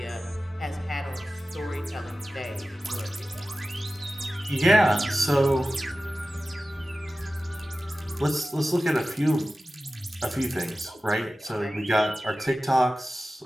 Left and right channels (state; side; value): normal; both; correlation 0.95